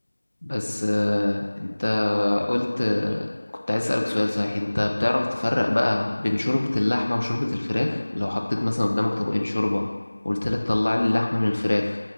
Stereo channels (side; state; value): both; inverted; correlation -1.00